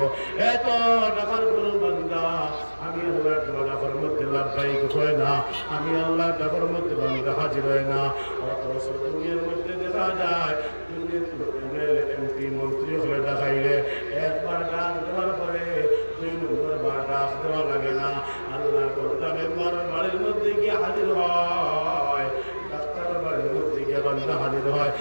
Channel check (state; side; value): inverted; both; correlation -1.00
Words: এত ডাকার কোনো বান্দা আমি আল্লাহর ডাকার মধ্যে লাভবাহিক হয় না, আমি আল্লাহর ডাকার মধ্যে বান্দা হাজির হয় না। অথচ দুনিয়ার মধ্যে দেখা যায় দুনিয়ার এমপি মন্ত্রী হলে দেখাইলে একবার ডাক দেওয়ার পরে 2 নম্বর বার ডাক দেওয়া লাগে না। আল্লাহর বান্দা মেম্বার বাড়ির মধ্যে গিয়ে হাজির হয়, ডাক্তারের বাড়ির মধ্যে গিয়ে বান্দা হাজির হয়,